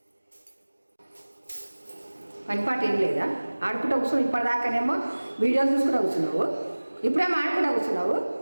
పని పాట ఏం లేదా? ఆడుకుంటూ కూర్చున్నావు. ఇప్పటిదాకానేమో వీడియోలు చూసుకుంటూ కూర్చున్నావు, ఇప్పుడేమో ఆడుకుంటూ కూర్చున్నావు.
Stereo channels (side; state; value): both; inverted; correlation -1.00